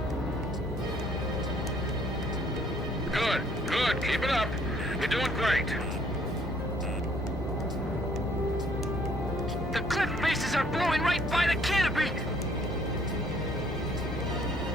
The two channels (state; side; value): normal; both; correlation 0.63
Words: Good. Keep it up. You're doing great. The cliff faces are blowing right by the canopy!